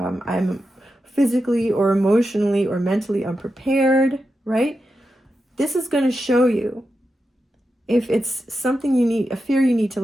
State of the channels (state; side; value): normal; both; correlation 0.89